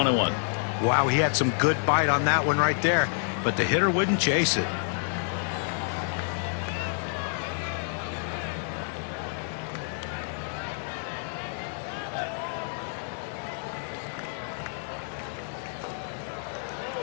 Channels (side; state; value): right; silent; 58 dB below the other